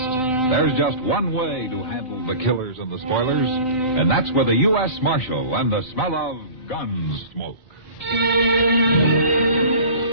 there's just one way to handle the killers and the spoilers, and that's with a U.S. Marshal and the smell of Gunsmoke.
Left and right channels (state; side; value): late; right; 3.9 ms